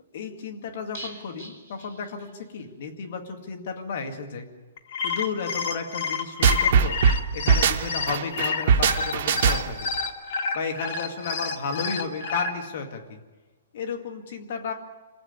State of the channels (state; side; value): inverted; both; correlation -0.47